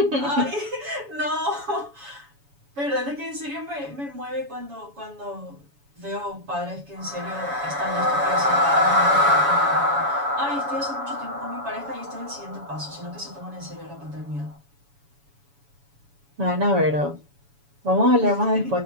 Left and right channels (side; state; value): left; late; 7.1 ms